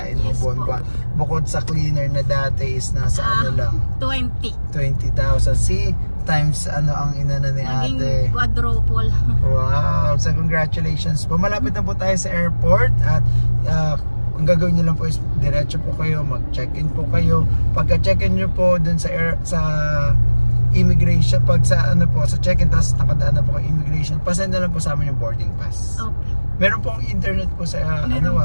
mo buwan-buwan. Bukod sa cleaner na dati is nasa lang 20,000. See, times ang inana ni ate. Naging quadruple. Wow! So congratulations po. Malapit na po tayo sa airport at ang gagawin nyo lang po is diretso po kayo, mag-check-in po kayo. Pagka-check-in nyo po dun sa immigration, pag sa sa check-in, tapos nakadaan na po kay immigration, pasend na lang po sa amin yung boarding pass. Okay. Meron pong internet po sa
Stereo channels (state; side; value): inverted; both; correlation -1.00